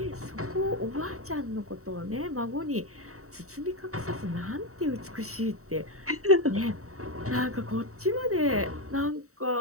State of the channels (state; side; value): late; left; 0.64 ms